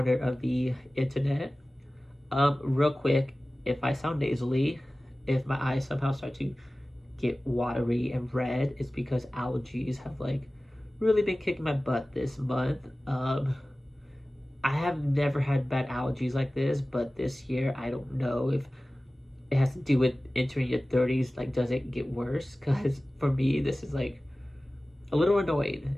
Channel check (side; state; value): both; normal; correlation 0.97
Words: of the internet. Real quick, if I sound nasally, if my eyes somehow start to get watery and red, it's because allergies have really been kicking my butt this month. I have never had bad allergies like this, but this year I don't know if it has to do with entering your 30s. Like, does it get worse? Because for me, this is a little annoying.